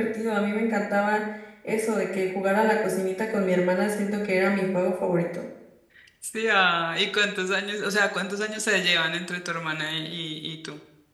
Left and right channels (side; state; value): both; identical; correlation 1.00